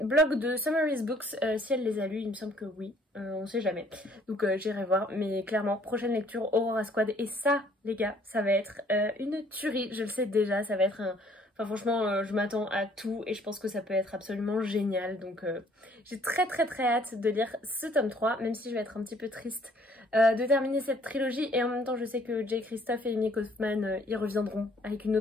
de Summaries Books si elle les a lus, il me semble que oui, on sait jamais, donc j'irai voir. Mais clairement prochaine lecture Aurora Squad, et ça les gars ça va être une tuerie, je le sais déjà, ça va être un... Enfin franchement je m'attends à tout et je pense que ça peut être absolument génial, donc j'ai très hâte de lire ce tome 3, même si je vais être un petit peu triste de terminer cette trilogie. Et en même temps je sais que Jay Christophe et Amy Kaufman ils reviendront avec une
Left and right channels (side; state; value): both; normal; correlation 0.60